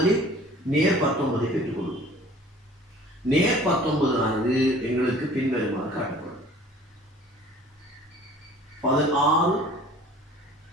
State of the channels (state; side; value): normal; both; correlation 0.49